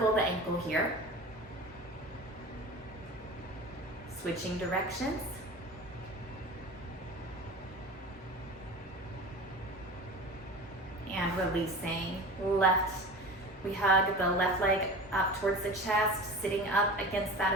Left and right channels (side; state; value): both; normal; correlation 0.34